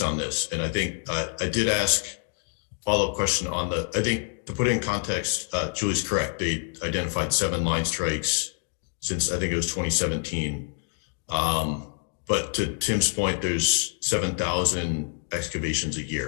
on this. And I think I did ask follow-up question on I think to put it in context, Julie's correct. They identified 7 line strikes since I think it was 2017. But to Tim's point, there's 7,000 excavations a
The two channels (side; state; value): right; quieter; 39.0 dB